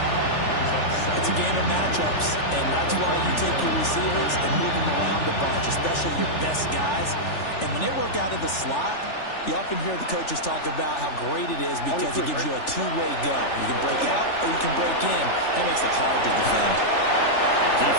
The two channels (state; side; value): late; right; 3.4 ms